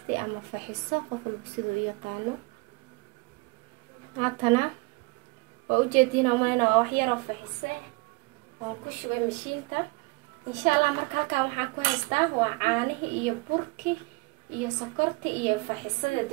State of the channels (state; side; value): quieter; left; 26.3 dB